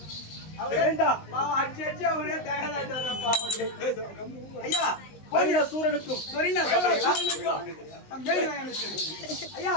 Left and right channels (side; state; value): right; late; 19 ms